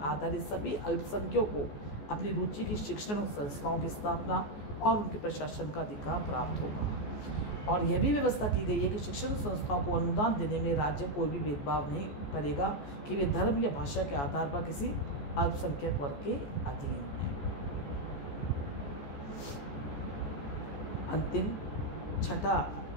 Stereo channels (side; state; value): right; late; 14 ms